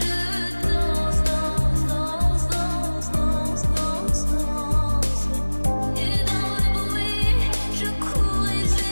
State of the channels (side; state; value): both; inverted; correlation -1.00